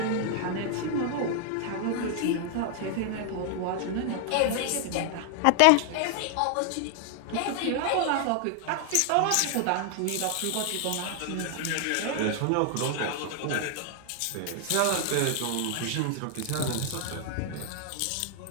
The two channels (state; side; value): different; both; correlation 0.00